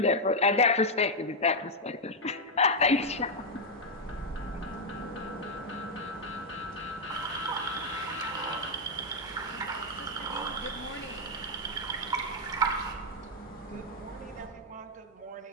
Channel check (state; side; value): normal; both; correlation 0.00